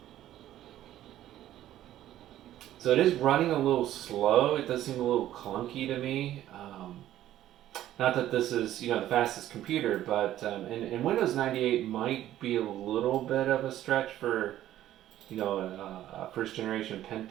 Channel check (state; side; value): quieter; left; 13.0 dB